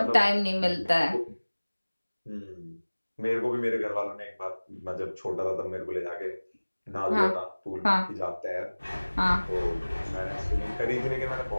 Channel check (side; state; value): both; inverted; correlation -1.00